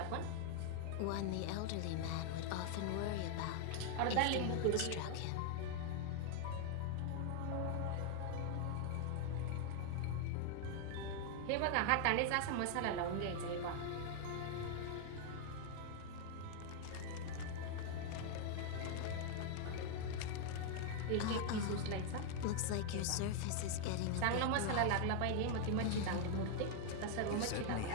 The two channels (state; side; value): different; both; correlation 0.00